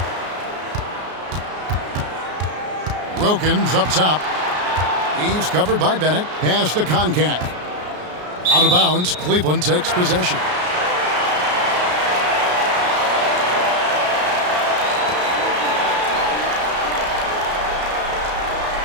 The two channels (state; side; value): late; left; 33 ms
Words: Wilkins up top. He's covered by Bennett. Pass to Koncak. Out of bounds. Cleveland takes possession.